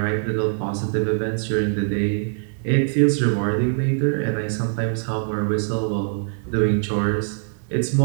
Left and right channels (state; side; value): silent; left; digital silence